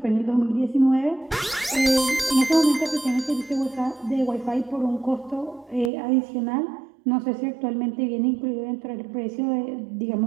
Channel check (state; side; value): drops out; left; at 5.9 s